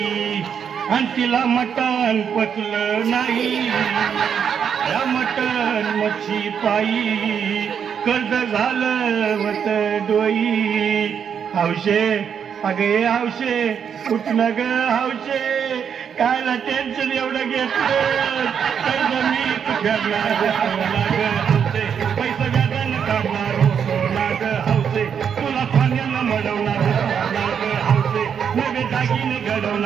आणि तिला मटण पचलं नाही या मटण मच्छी पायी कर्ज झालं होत डोई हौशे अगे हौशे उठणं ग हौशे कायला टेन्शन एवढं घेतलं कर्ज मी फेडणार हौशे पैसा व्याजानं काढणार होतो नाग हौशे तुला पाण्यानं मडवणार होतो नाग हौशे नवे दागिने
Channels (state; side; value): quieter; left; 7.6 dB